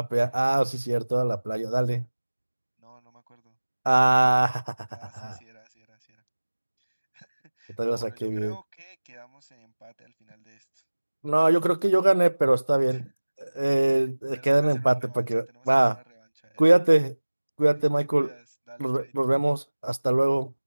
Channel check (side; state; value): both; inverted; correlation -1.00